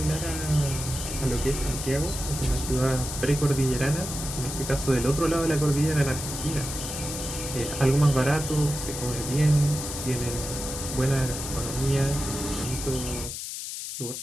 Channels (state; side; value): noise; left; hiss, 6 dB below the sound